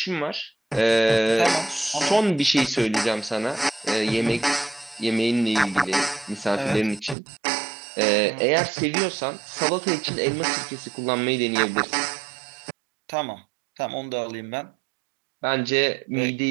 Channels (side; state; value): left; drops out; at 7.2 s